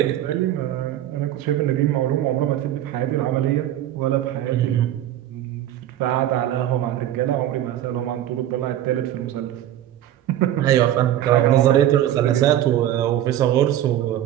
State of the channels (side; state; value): left; quieter; 12.2 dB